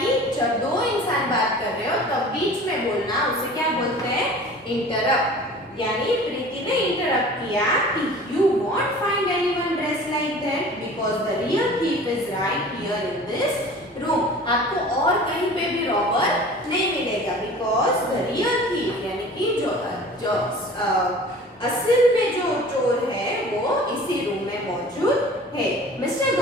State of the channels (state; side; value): normal; both; correlation 0.43